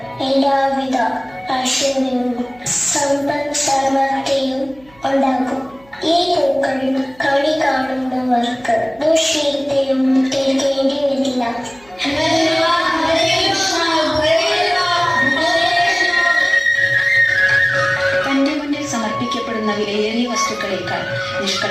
എല്ലാവിധ ഐശ്വര്യവും സമ്പൽ സമൃദ്ധിയും ഉണ്ടാകും. ഈ പൂക്കൾ കണി കാണുന്നവർക്ക് ദുശ്ശീലവും കേൾക്കേണ്ടി വരില്ല. തന്റെ മുന്നിൽ സമർപ്പിക്കപ്പെടുന്ന വിലയേറിയ വസ്തുക്കളേക്കാൾ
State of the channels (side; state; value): right; noise; hum, 28 dB below the sound